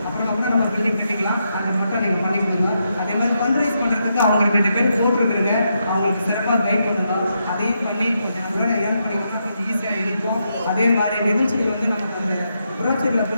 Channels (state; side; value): inverted; both; correlation -0.82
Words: அப்புறம் கூட நம்ம பில்டிங் கட்டிக்கலாம். அதை மட்டும் நீங்கள் பண்ணி கொடுங்க. அதே மாதிரி ஃபண்ட் ரைஸ் பண்ணுறதுக்கு அவங்க 2 பேர் போட்டிருக்குறீங்க. அவங்களுக்கு சிறப்பாக கைட் பண்ணுங்க. அதையும் பண்ணி கொஞ்சம் நம்மளோட ஏர்ன் பண்ணிக்கணும்னா கொஞ்சம் ஈஸியாக இருக்கும். அதே மாதிரி நிகழ்ச்சிகள் வந்து நமக்கு அந்த புரோச்சரில்